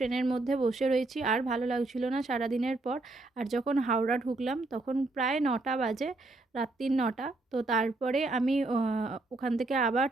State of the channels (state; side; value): quieter; left; 3.1 dB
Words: মধ্যে বসে রয়েছি, আর ভালো লাগছিল না সারাদিনের পর। আর যখন হাওড়া ঢুকলাম তখন প্রায় 9টা বাজে, রাত্রির 9টা। তো তারপরে আমি ওখান থেকে আবার